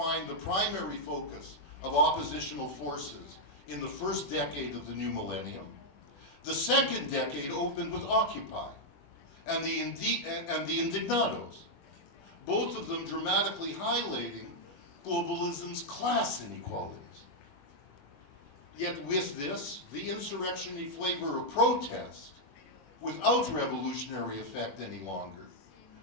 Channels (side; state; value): right; late; 21 ms